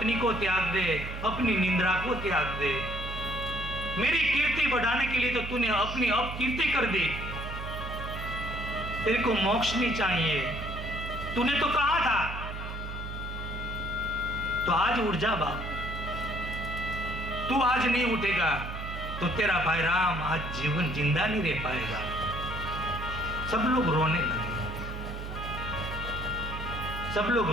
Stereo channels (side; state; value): right; noise; hum, 7 dB below the sound